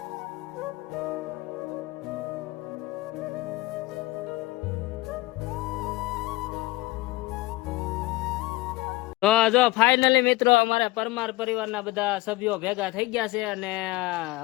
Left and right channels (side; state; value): right; quieter; 20.1 dB